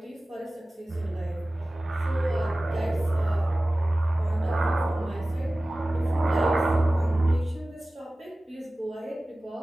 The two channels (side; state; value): both; normal; correlation 0.97